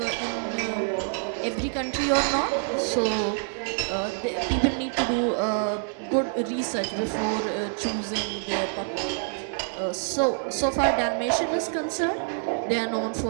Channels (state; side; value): silent; left; 60 dB below the other